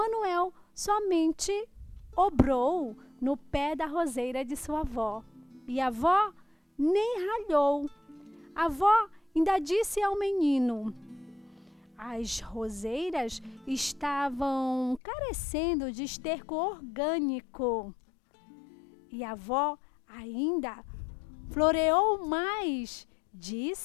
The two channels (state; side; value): drops out; right; at 15.0 s